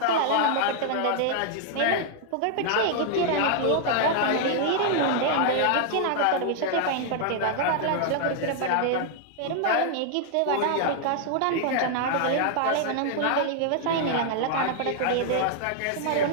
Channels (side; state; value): both; different; correlation 0.00